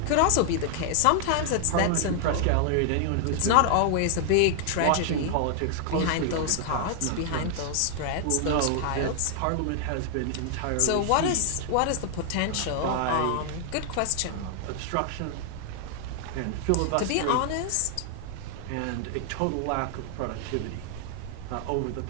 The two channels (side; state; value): both; different; correlation 0.00